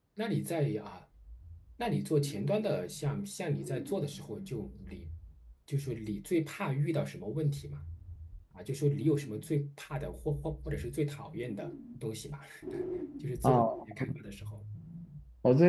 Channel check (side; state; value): both; identical; correlation 1.00